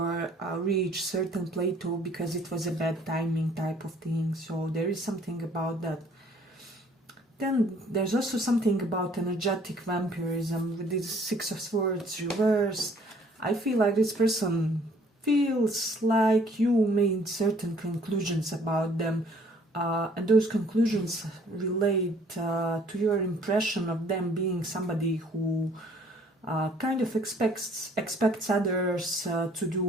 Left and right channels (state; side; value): normal; both; correlation 0.59